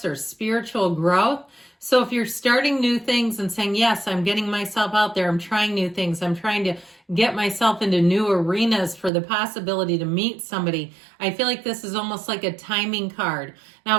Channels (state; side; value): drops out; left; at 9.1 s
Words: or spiritual growth. So if you're starting new things and saying, yes, I'm getting myself out there, I'm trying new things, I'm trying to get myself into new arenas for the possibility to meet somebody, I feel like this is almost like a timing card.